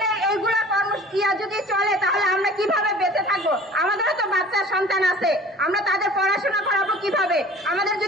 এইগুলা কর্মসূচিয়া যদি চলে তাহলে আমরা কিভাবে বেঁচে থাকবো? আমাদেরও তো বাচ্চা সন্তান আছে, আমরা তাদের পড়াশোনা করাবো কিভাবে? আমাদের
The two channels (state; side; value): normal; both; correlation 0.45